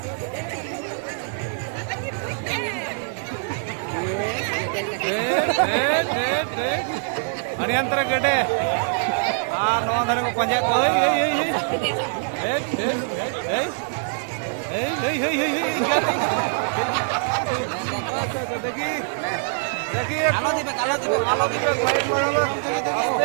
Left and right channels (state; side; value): silent; left; digital silence